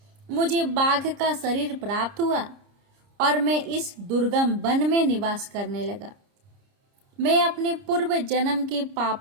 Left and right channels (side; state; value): left; late; 30 ms